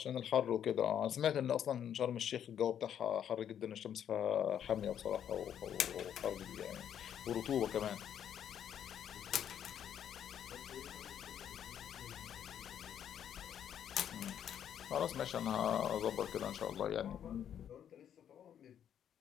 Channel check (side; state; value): right; quieter; 9.4 dB